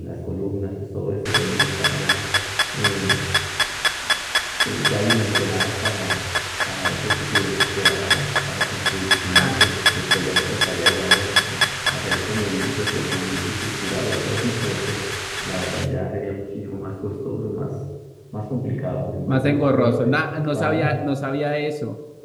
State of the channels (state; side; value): identical; both; correlation 1.00